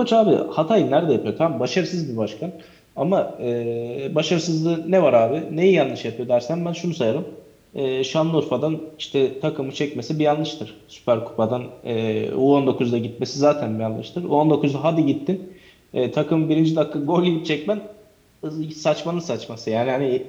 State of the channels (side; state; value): both; identical; correlation 1.00